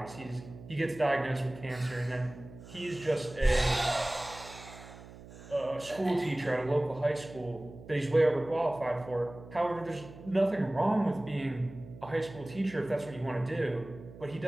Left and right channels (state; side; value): noise; right; hum, 17 dB below the sound